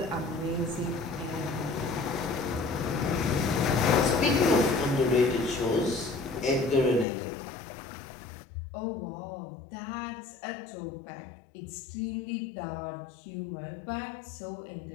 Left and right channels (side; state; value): right; drops out; at 7.1 s